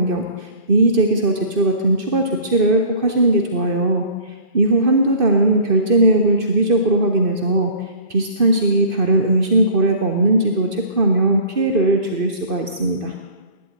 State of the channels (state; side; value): late; left; 2.6 ms